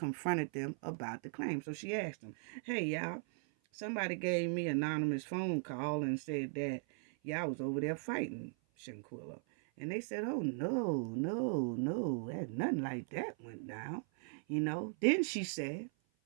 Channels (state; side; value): silent; left; 52 dB below the other